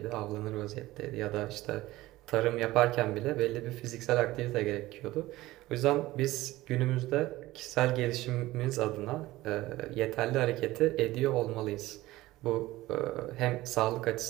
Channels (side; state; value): left; quieter; 17.6 dB